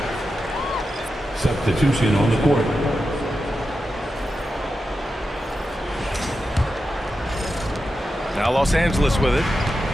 Substitution on the court. Now Los Angeles with it.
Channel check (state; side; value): normal; both; correlation 0.90